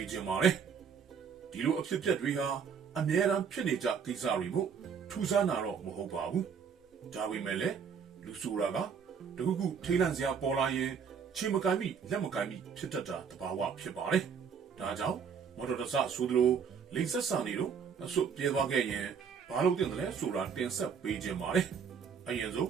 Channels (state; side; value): quieter; left; 6.7 dB